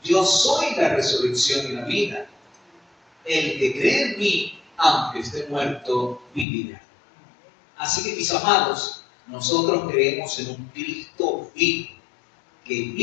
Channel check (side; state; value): right; drops out; at 6.5 s